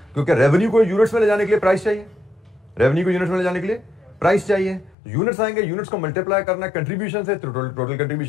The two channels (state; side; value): drops out; right; at 5.0 s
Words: क्योंकि रेवेन्यू को यूनिट्स में ले जाने के लिए प्राइस चाहिए, रेवेन्यू को यूनिट्स में ले जाने के लिए प्राइस चाहिए। यूनिट्स आएंगे, यूनिट्स को मल्टीप्लाई करना है कंट्रीब्यूशन से, टोटल